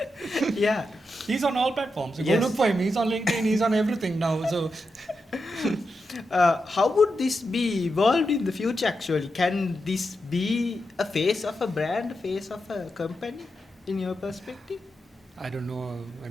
Yeah, he's on all platforms. Go look for him. He's on LinkedIn. He's on everything now. So, how would this be evolved in the future? Actually, can this be a face of a brand, a face of a company, in your perspective? I don't know. I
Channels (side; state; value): both; normal; correlation 0.87